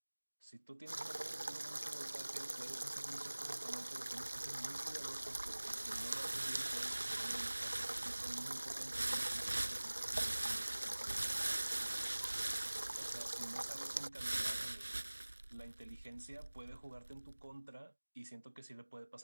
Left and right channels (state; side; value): inverted; both; correlation -1.00